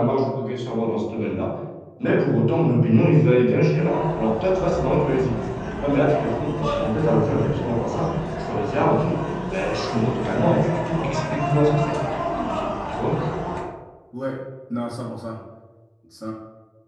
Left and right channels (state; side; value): identical; both; correlation 1.00